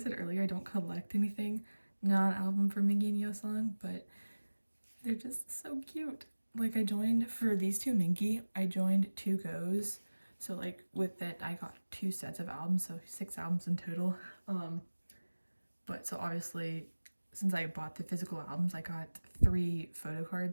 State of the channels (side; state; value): both; inverted; correlation -1.00